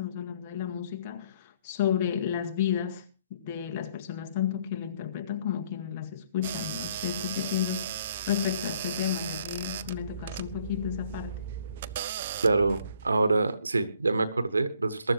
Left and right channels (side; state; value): both; inverted; correlation -0.63